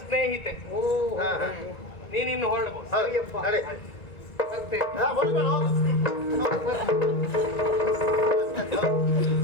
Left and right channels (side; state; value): right; late; 1.9 ms